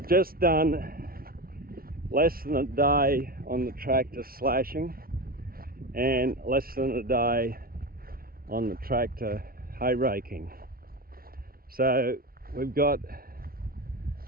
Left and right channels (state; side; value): late; left; 0.43 ms